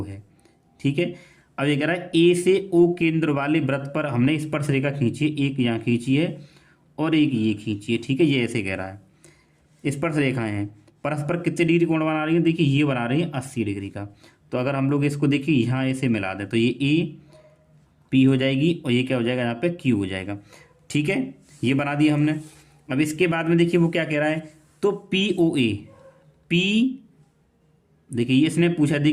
है। ठीक है, अब ये कह रहा है A से O केंद्र वाले वृत्त पर हमने स्पर्श रेखा खींची है, एक यहाँ खींची है और एक ये खींची है। ठीक है, ये ऐसे कह रहा है स्पर्श रेखाएं हैं, परस्पर कितने डिग्री कोण बना रही है, देखिए ये बना रही है 80 डिग्री का। तो अगर हम लोग इसको देखिए यहाँ ऐसे मिला दें तो ये AP हो जाएगी और ये क्या हो जाएगा यहाँ पे Q हो जाएगा। ठीक है, ये बना दिया हमने। अब इसके बाद में देखिए वो क्या कह रहा है, तो POA, P देखिए ये इसने पूछा,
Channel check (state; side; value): identical; both; correlation 1.00